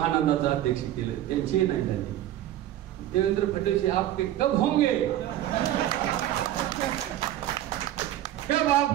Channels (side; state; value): left; quieter; 13.0 dB